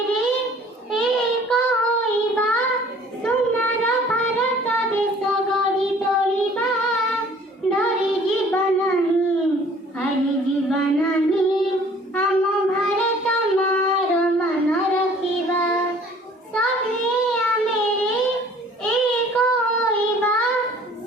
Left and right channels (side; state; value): both; normal; correlation 0.53